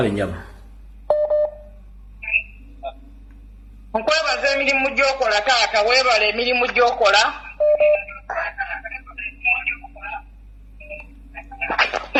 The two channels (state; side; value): identical; both; correlation 1.00